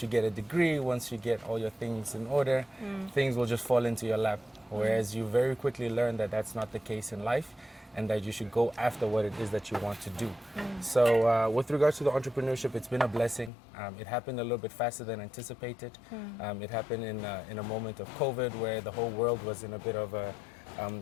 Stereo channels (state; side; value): drops out; right; at 13.5 s